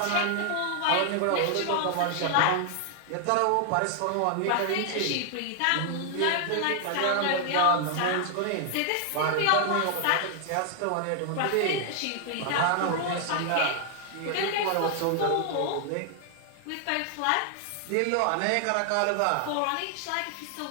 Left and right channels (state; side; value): different; both; correlation 0.00